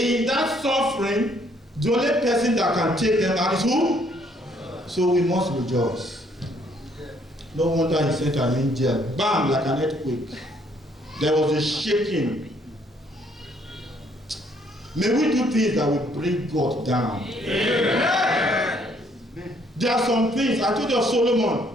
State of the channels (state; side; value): normal; both; correlation 0.66